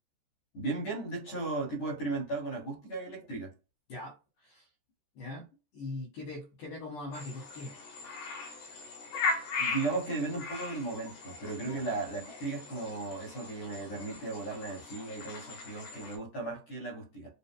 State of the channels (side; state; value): right; late; 14 ms